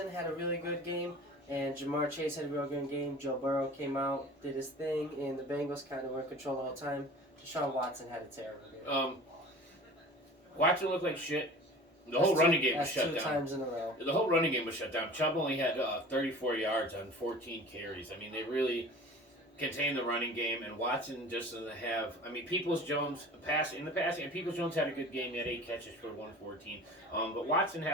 had a really good game. And Jamar Chase had a real good game. Joe Burrow came out, did his thing, and the Bengals kind of were in control the whole time. Deshaun Watson had a terrible game. Watson looked like shit. The whole running game was shut down. 2 times in a row. The whole running game was shut down. Chubb only had 34 yards on 14 carries. They really contained the running game, and Watson just doesn't have. Peoples-Jones and Peoples-Jones had a good game. He had 8 catches for 114. But Watson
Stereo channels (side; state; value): both; normal; correlation 0.41